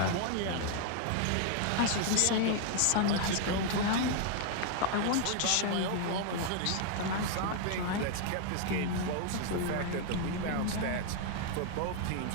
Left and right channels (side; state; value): both; different; correlation 0.00